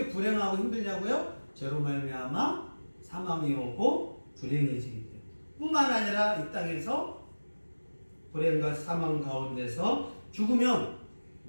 불행하고 힘들냐고요? 죄로 말미암아 사망이 오고 불행해지기 때문에. 뿐만 아니라 이 땅에서 불행과 사망 가운데서 죽으면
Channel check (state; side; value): inverted; both; correlation -1.00